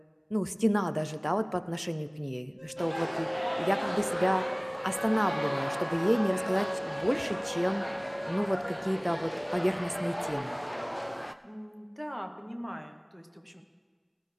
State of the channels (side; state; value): both; identical; correlation 1.00